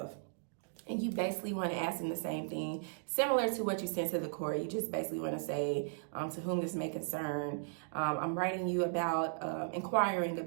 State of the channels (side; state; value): left; silent; digital silence